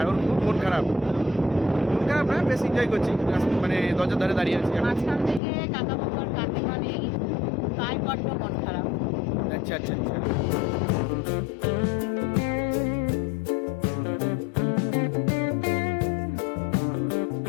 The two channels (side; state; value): right; drops out; at 5.4 s